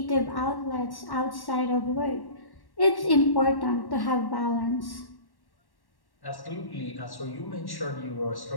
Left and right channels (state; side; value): late; right; 1.1 ms